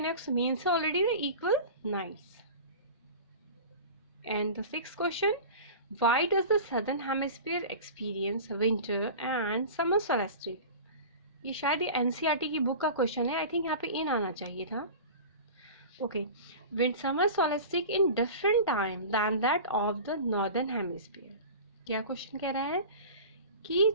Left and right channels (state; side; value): inverted; both; correlation -0.35